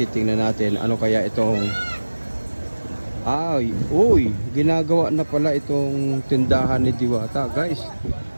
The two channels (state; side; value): inverted; both; correlation -1.00